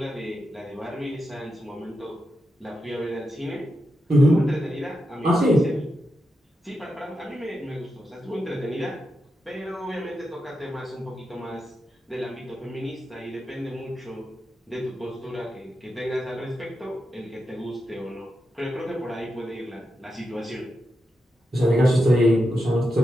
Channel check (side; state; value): both; normal; correlation 0.87